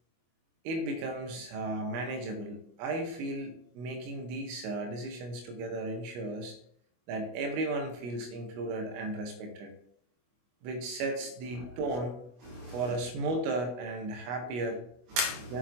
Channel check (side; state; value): left; late; 24 ms